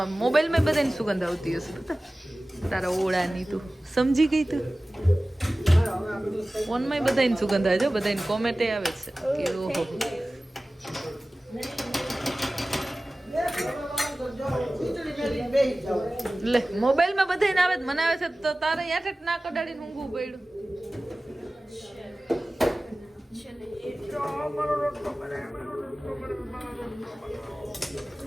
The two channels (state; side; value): normal; both; correlation 0.97